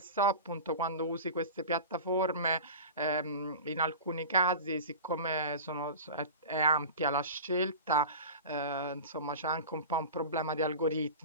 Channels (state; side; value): inverted; both; correlation -0.32